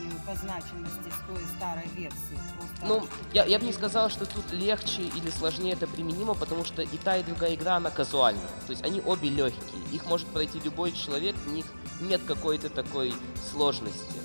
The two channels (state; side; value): inverted; both; correlation -1.00